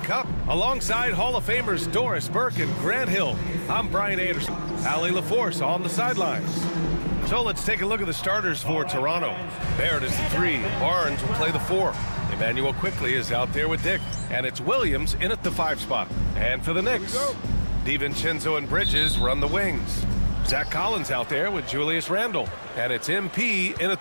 Cup. Alongside Hall of Famers Doris Burke and Grant Hill, I'm Brian Anderson. Allie LaForce on the sidelines. So let's take a look at the starters for Toronto. Barrett is the 3. Barnes will play the 4. Emmanuel Quickley is out there with Dick. And it's Williams in at the 5 spot. And for the Knicks, DiVincenzo and Bridges run the wings. Zach Collins out there with Julius Randle. And it's MP in at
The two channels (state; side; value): inverted; both; correlation -1.00